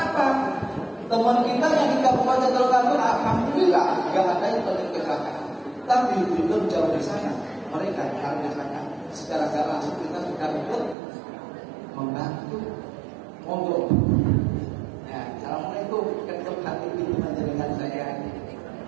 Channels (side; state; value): left; drops out; at 11.0 s